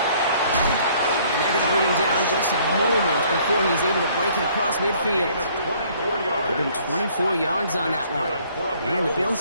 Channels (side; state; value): both; inverted; correlation -0.60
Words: they're going to bring him down just a moment before he's able to break it across midfield. Give him 24 yards on that one. And the